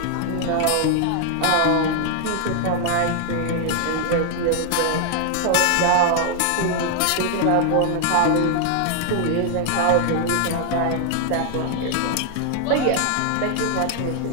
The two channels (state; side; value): different; both; correlation 0.00